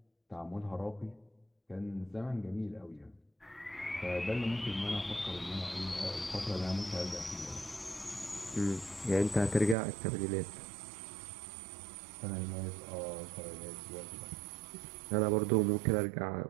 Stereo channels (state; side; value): drops out; left; at 9.8 s